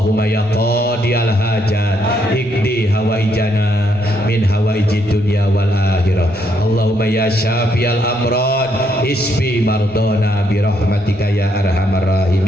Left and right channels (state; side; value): normal; both; correlation 0.74